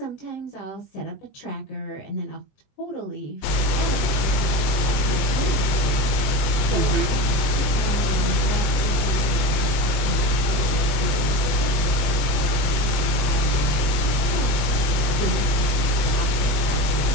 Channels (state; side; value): late; right; 21 ms